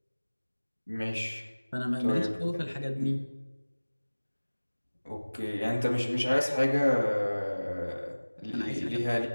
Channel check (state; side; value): inverted; both; correlation -1.00